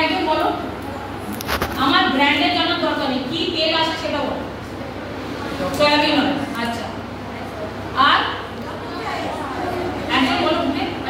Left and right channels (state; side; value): identical; both; correlation 1.00